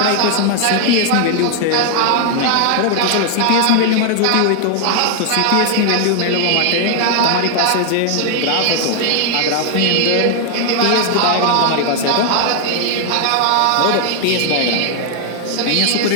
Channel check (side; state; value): both; different; correlation 0.00